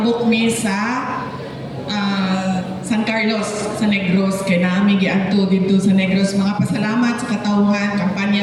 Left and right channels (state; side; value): identical; both; correlation 1.00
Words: mi sa San Carlos sa Negros kay naami giadto dito sa Negros. Mga pasalamat sa katawhan